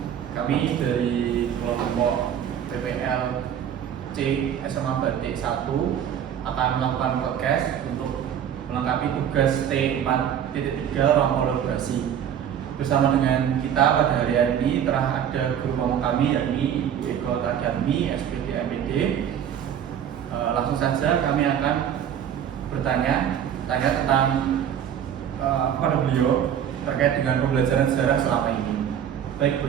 Kami dari kelompok PPL C SMA Batik 1 akan melakukan podcast untuk melengkapi tugas T4.3 ruang kolaborasi. Bersama dengan kita pada hari ini telah ada guru pamong kami yakni Ibu Eko Tarjatmi, SPD MPD. Langsung saja kami akan bertanya tentang kepada beliau terkait dengan pembelajaran sejarah selama ini. Baik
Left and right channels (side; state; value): left; quieter; 9.3 dB